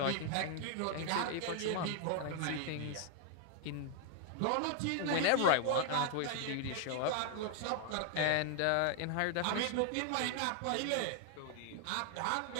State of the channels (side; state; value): both; different; correlation 0.00